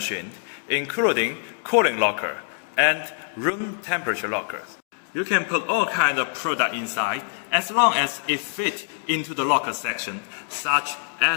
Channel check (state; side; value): silent; right; digital silence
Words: including cooling locker and room temperature lockers. You can put all kinds of product inside as long as it fits into the locker section, such